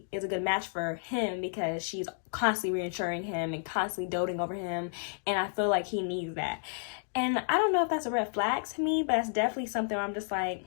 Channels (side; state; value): right; silent; digital silence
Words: is a good match for him, because she's constantly reassuring him and constantly doting over him. And I feel like he needs that. And I don't know if that's a red flag to me, but that's definitely something where I'm just like,